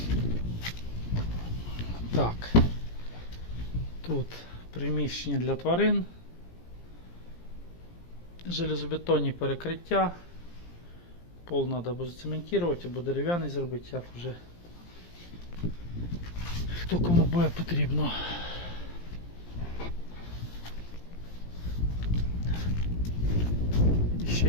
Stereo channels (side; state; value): right; late; 17 ms